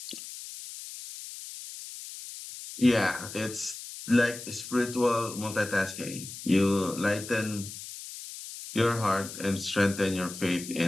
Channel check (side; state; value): left; noise; hiss, 11 dB below the sound